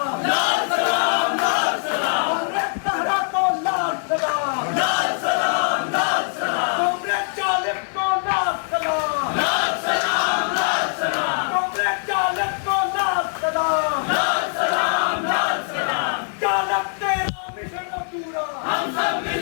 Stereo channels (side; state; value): right; silent; digital silence